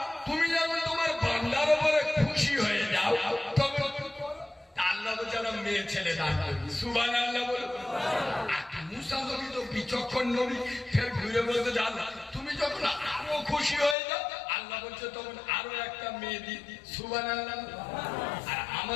তুমি যখন তোমার বান্দার উপরে খুশি হয়ে যাও তখন আল্লাহ বেচারা মেয়ে ছেলে দান করবে। সুবহানাল্লাহ বলো। মুসা নবী তো বিচক্ষণ নবী, ফের ঘুরে বলতে আল্লাহ তুমি যখন আরো খুশি হয়ে যাও আল্লাহ বলছে তখন আরো একটা মেয়ে দি। সুবহানাল্লাহ। আর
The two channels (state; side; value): drops out; right; at 14.0 s